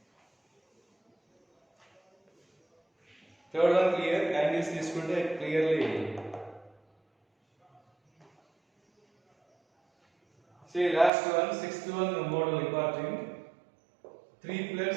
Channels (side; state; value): left; drops out; at 11.1 s